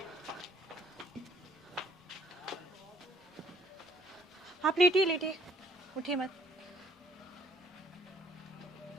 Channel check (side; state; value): both; normal; correlation 0.63